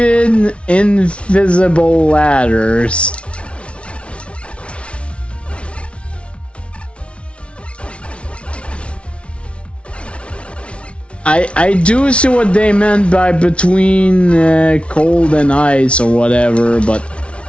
invisible ladders. I do see what they meant by between cold and ice or whatever, but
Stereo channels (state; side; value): late; right; 0.060 ms